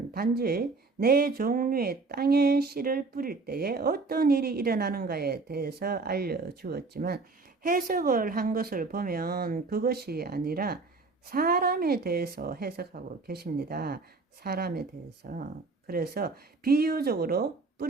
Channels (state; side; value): quieter; left; 3.9 dB